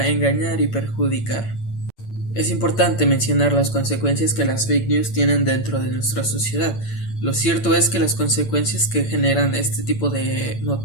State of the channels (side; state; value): right; late; 8.8 ms